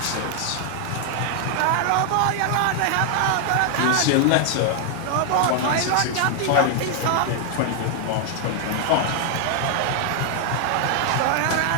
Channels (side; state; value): both; different; correlation 0.00